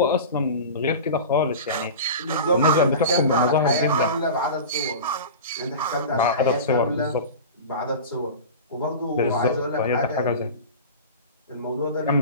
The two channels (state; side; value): inverted; both; correlation -0.31